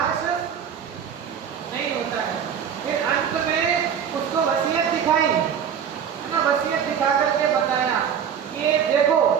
नहीं होता है। फिर अंत में उसको वसीयत दिखाई, है ना, वसीयत दिखा करके बताया कि ये देखो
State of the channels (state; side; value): quieter; left; 8.0 dB